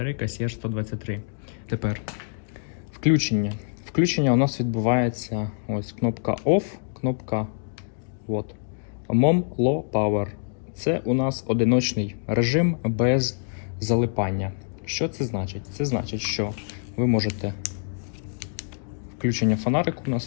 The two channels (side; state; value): right; silent; digital silence